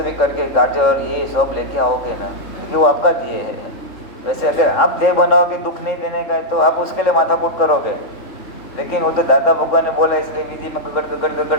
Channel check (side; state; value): right; late; 3.3 ms